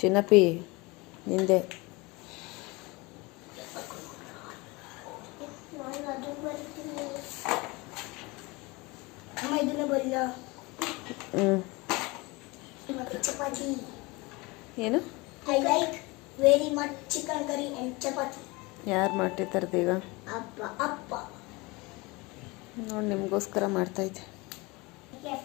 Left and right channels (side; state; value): right; quieter; 24.7 dB